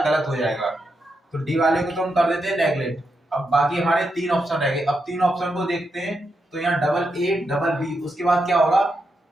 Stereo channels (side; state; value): both; normal; correlation 0.84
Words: गलत हो जाएगा। तो डी वाले को तो हम कर देते हैं नेगलेक्ट। अब बाकी हमारे तीन ऑप्शन रह गए। अब तीन ऑप्शन को देखते हैं। तो यहाँ AA-B, उसके बाद क्या होगा